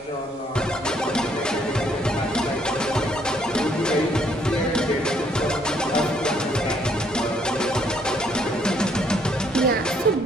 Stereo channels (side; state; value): both; normal; correlation 0.68